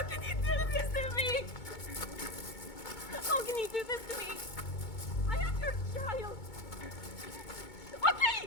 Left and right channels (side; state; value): right; late; 2.2 ms